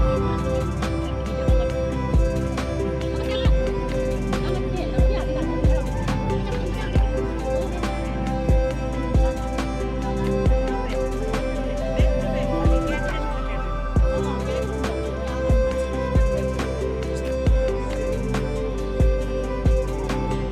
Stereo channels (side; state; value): both; identical; correlation 1.00